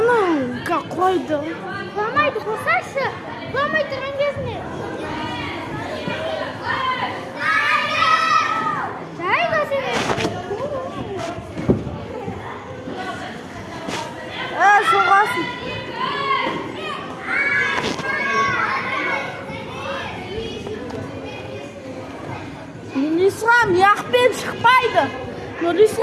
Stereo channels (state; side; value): identical; both; correlation 1.00